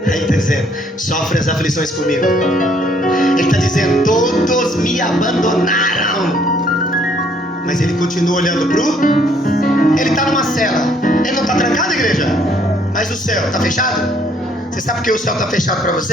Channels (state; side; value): normal; both; correlation 0.64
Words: Aí ele está dizendo: sofre as aflições comigo. Ele está dizendo: todos me abandonaram. Mas ele continua olhando pro. Ele está numa cela. Ele não está trancado, igreja? Mas o céu está fechado? Você sabe por que o céu está fechado para